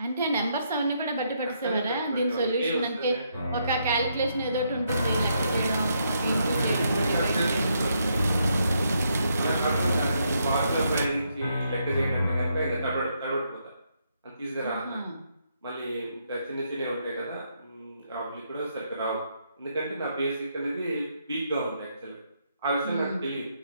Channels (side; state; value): both; inverted; correlation -0.77